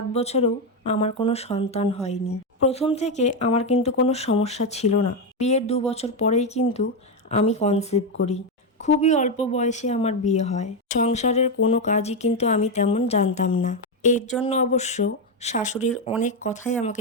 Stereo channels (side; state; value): both; normal; correlation 0.07